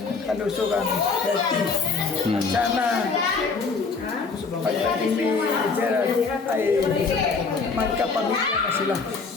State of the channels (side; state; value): right; quieter; 4.7 dB